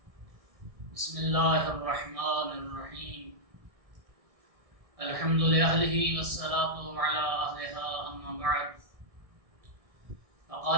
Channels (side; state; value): left; late; 1.6 ms